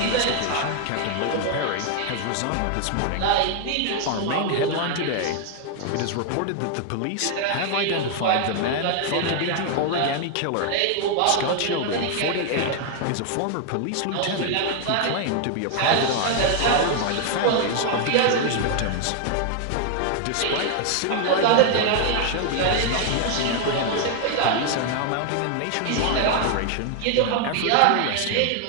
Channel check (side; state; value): both; different; correlation 0.00